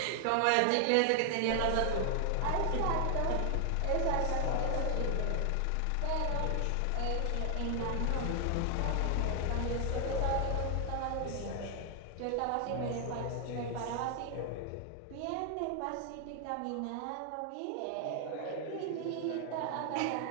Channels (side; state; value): both; different; correlation 0.00